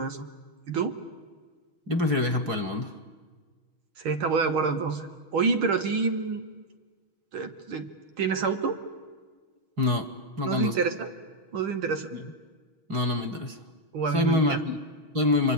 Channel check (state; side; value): late; left; 6.3 ms